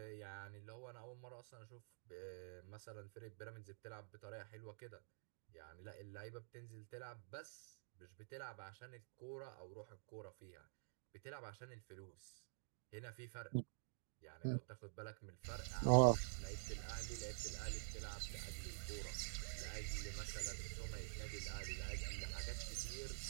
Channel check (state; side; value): silent; left; digital silence